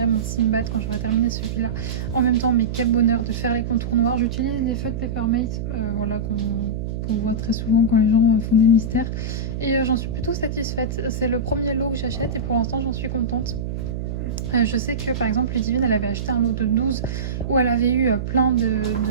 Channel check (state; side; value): noise; right; hum, 4 dB below the sound